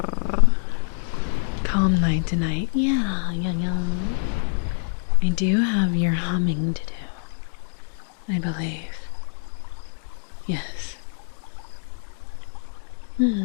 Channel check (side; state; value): right; silent; digital silence